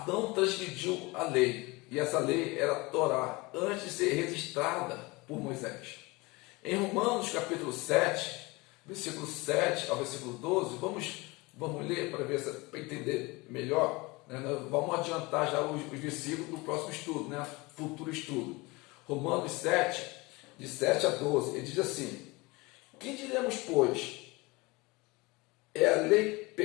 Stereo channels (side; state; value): right; quieter; 24.0 dB